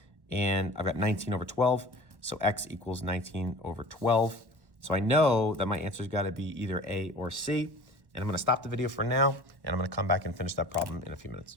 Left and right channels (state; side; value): late; left; 1.1 ms